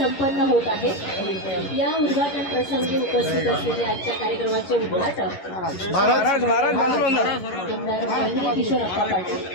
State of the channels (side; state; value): right; late; 11 ms